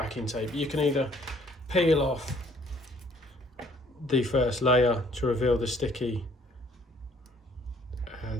tape. You can either peel off the first layer to reveal the sticky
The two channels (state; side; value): normal; both; correlation 0.61